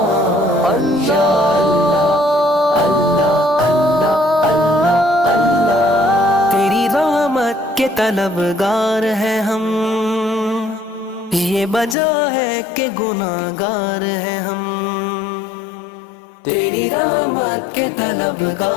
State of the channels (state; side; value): drops out; right; at 12.0 s